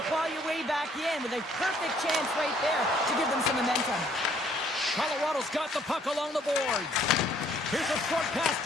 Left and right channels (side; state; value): both; normal; correlation 0.63